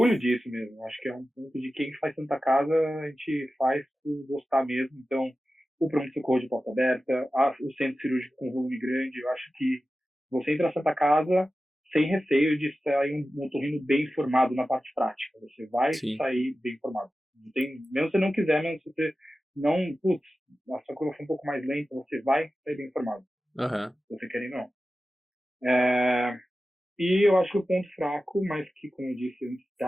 disso mesmo. Acho que é um ponto de quem faz Santa Casa, a gente faz por gostar mesmo. Então, o pronto-socorro de porta aberta, o centro cirúrgico com volume grande, eu acho que você entra na Santa Casa sem receio de sair um otorrino bem formado na parte prática. Você vai sair bem formado. Não tem, mesmo se você não quiser, mesmo se você não... a sua curva foi um pouco mais lenta, você vai sair bem formado. Se você quer ou não. E eu acho que o ponto fraco, mas que, como eu disse,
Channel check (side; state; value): both; normal; correlation 0.94